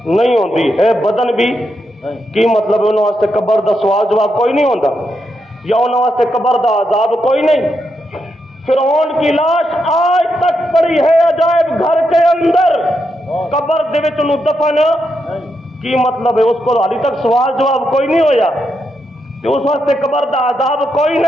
نہیں ہوندی ہے, بدن بھی کی مطلب انہوں واسطے قبر دا سوال جواب کوئی نہیں ہوندا, یا انہوں واسطے قبر دا عذاب کوئی نہیں. فرعون کی لاش آج تک پڑی ہے عجائب گھر کے اندر, قبر دے وچ انہوں دفن کی مطلب ہے اس کو حالی تک سوال جواب کوئی نہیں ہویا. کہ اس وقت قبر دا عذاب کوئی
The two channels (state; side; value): normal; both; correlation 0.83